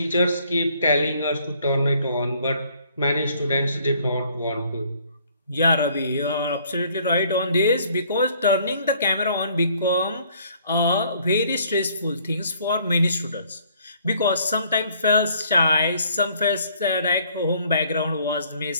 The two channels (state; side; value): inverted; both; correlation -0.62